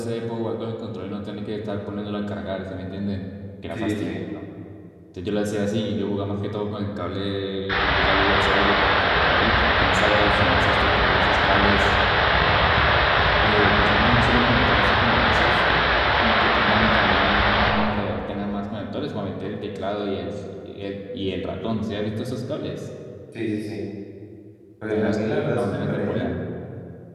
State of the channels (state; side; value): identical; both; correlation 1.00